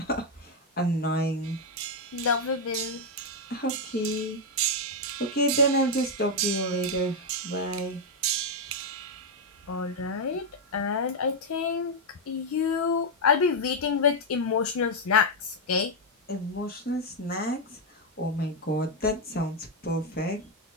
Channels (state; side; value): normal; both; correlation 0.01